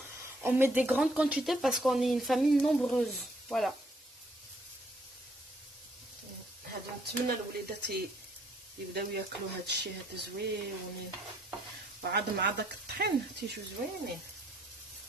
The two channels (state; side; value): normal; both; correlation 0.68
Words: on met des grandes quantités parce qu'on est une famille nombreuse. Voilà. هذا نتمنى الوليدات يبداو ياكلوا هذا الشيء هذا زوين وعاد مع داك الطحين تيجيو زوينين.